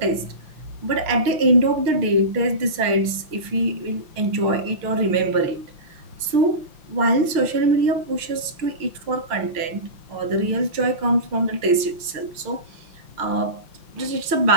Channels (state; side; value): late; left; 5.8 ms